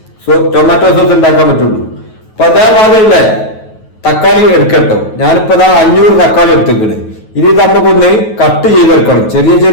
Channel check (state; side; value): late; right; 9.3 ms